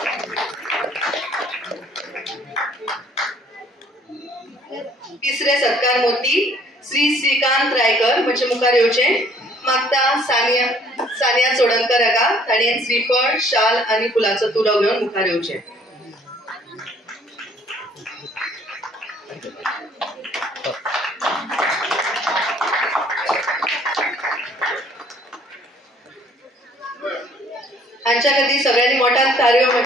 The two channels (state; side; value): normal; both; correlation 0.59